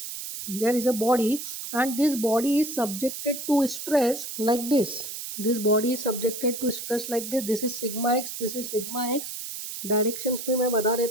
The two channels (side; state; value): right; noise; hiss, 7 dB below the sound